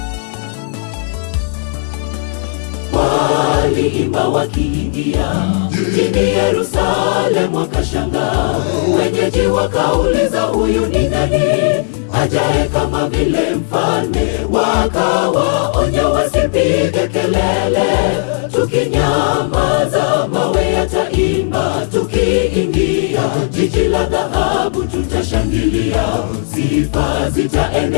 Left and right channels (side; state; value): right; silent; digital silence